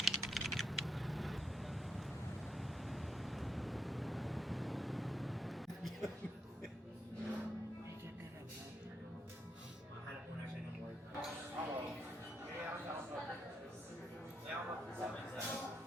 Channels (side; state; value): both; normal; correlation 0.80